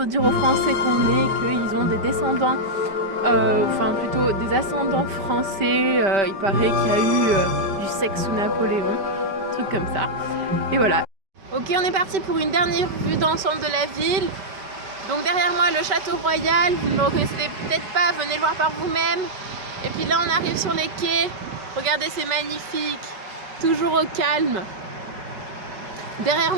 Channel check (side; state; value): left; late; 5.1 ms